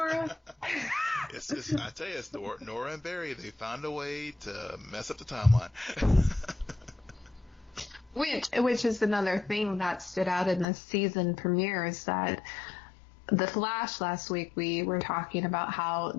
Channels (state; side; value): drops out; right; at 10.7 s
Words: I tell you, it's Nora and Barry. They found a way to mess up the timeline. Which is another thing that stood out in the season premiere, is that The Flash last week, we were talking about how